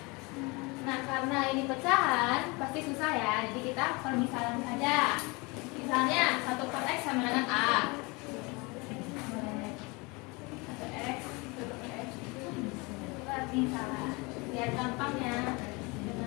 Nah, karena ini pecahan pasti susah ya, jadi kita permisalan saja. Misalnya 1 per x sama dengan a. Berarti salah. Lihat gampangnya.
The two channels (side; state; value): right; quieter; 26.8 dB